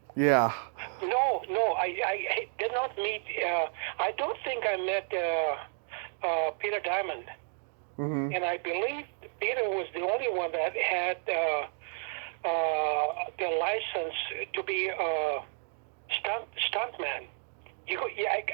Yeah. No, I did not meet. I don't think I met Peter Diamond. Mm-hmm. And I believe Peter was the only one that had the license to be a stuntman.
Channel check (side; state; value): left; silent; 57 dB below the other